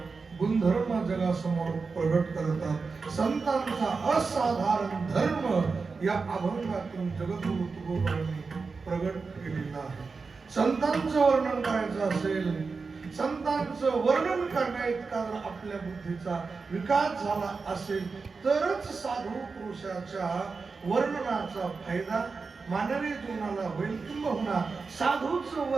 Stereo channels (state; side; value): quieter; left; 4.6 dB